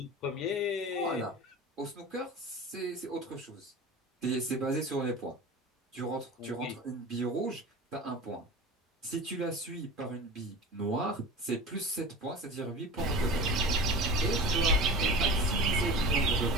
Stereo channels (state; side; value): normal; both; correlation 0.34